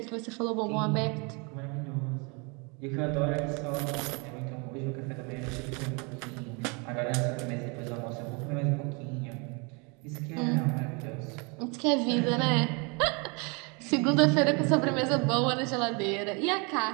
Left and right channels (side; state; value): left; quieter; 31.5 dB